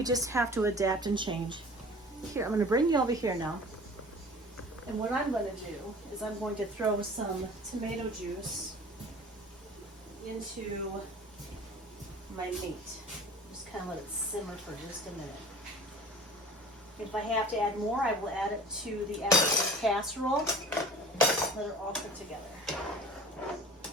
just have to adapt and change. Here, I'm going to bring you over here now. And what I'm going to do is I'm going to throw some tomato juice into my meat. Just kind of let it simmer for just a minute. If I have to add more, I will add it to the actual casserole. Let it all cook together.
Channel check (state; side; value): normal; both; correlation 0.42